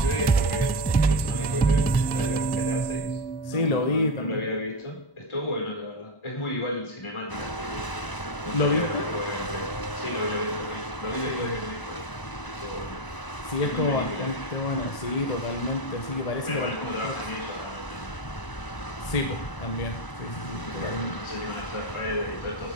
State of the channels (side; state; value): right; late; 1.0 ms